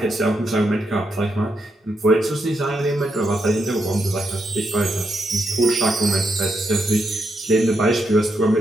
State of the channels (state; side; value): normal; both; correlation 0.82